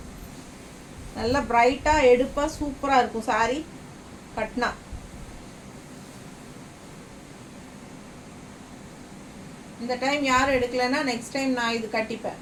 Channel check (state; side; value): identical; both; correlation 1.00